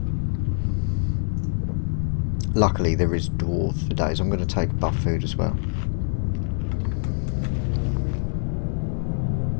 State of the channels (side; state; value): right; silent; digital silence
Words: Luckily there is dwarves for days. I'm going to take buff food as well.